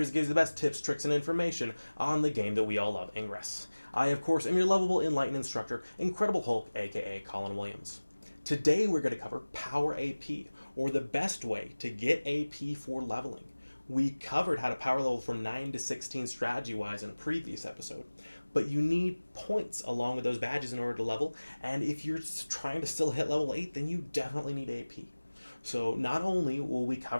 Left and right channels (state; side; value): inverted; both; correlation -1.00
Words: that gives the best tips, tricks, and information on the game that we all love, Ingress. I, of course, am your lovable, enlightened instructor, Incredible Hulk, aka Colin Williams. Today we're going to cover Power AP, or the best way to get AP for leveling. We covered how to power level from 9 to 16 strategy-wise in a previous episode, but you need points along with those badges in order to level, and if you're trying to still hit level 8, then you definitely need AP. So not only will we